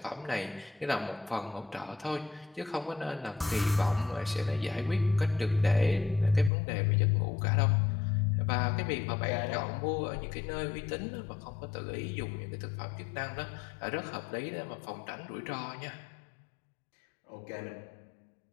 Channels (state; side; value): drops out; right; at 6.5 s